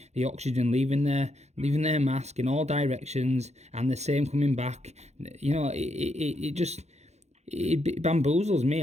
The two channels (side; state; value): left; late; 0.32 ms